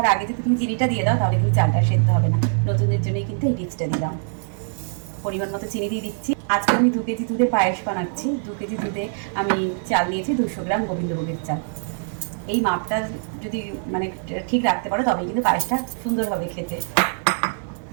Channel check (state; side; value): silent; left; digital silence